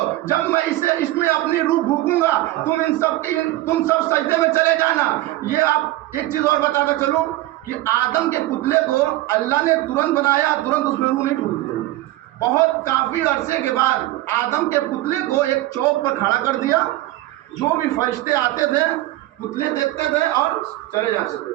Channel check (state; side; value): quieter; left; 16.8 dB